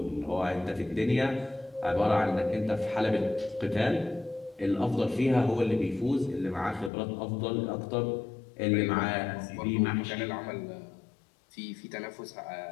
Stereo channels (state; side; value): drops out; right; at 6.9 s